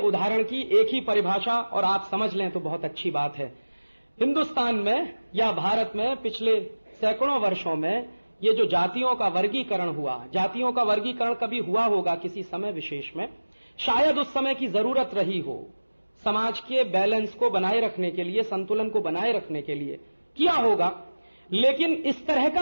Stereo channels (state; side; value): inverted; both; correlation -1.00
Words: की एक ही परिभाषा और आप समझ लें तो बहुत अच्छी बात है। हिंदुस्तान में या भारत में पिछले सैकड़ों वर्षों में ये जो जातियों का वर्गीकरण हुआ, जातियों का वर्गीकरण कभी हुआ होगा किसी समय विशेष में, शायद उस समय की जरूरत रही हो, समाज के बैलेंस को बनाए रखने के लिए, संतुलन को बनाए रखने के लिए किया होगा। लेकिन इस तरह का